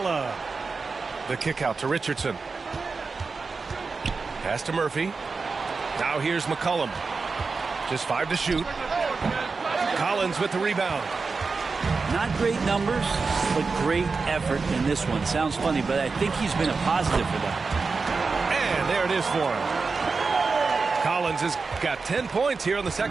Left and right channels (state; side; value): quieter; left; 4.5 dB